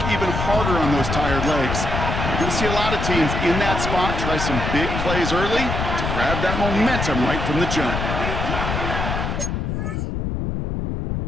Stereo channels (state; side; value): noise; left; rumble, 2 dB below the sound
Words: even harder on those tired legs. You're going to see a lot of teams in that spot try some big plays early to grab that momentum right from the jump.